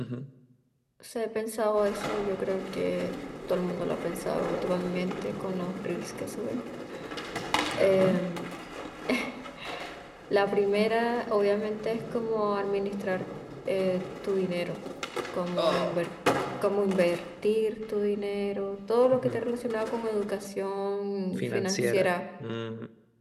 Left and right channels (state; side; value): identical; both; correlation 1.00